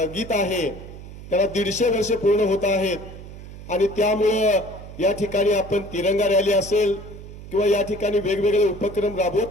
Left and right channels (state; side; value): noise; right; hum, 14 dB below the sound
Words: गीत आहे त्याला 150 वर्ष पूर्ण होत आहेत आणि त्यामुळे या ठिकाणी आपण तिरंगा रॅली असेल किंवा या ठिकाणी वेगवेगळे उपक्रम